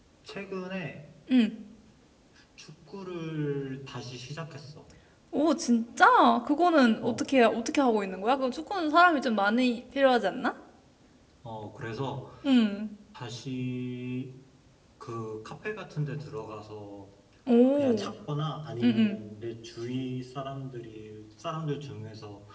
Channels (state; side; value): identical; both; correlation 1.00